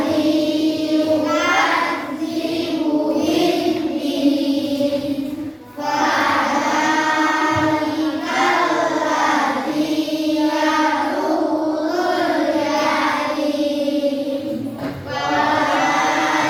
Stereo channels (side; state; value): both; identical; correlation 1.00